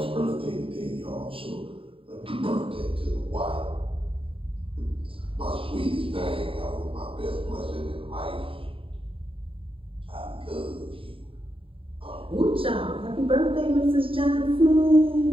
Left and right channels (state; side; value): late; left; 0.26 ms